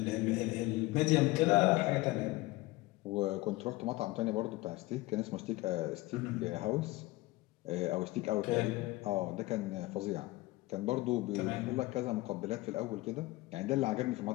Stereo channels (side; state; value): right; quieter; 20.2 dB